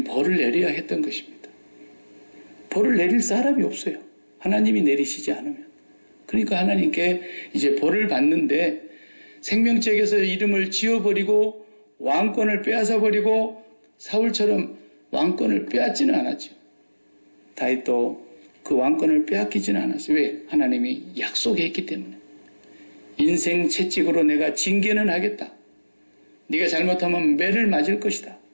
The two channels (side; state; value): both; inverted; correlation -1.00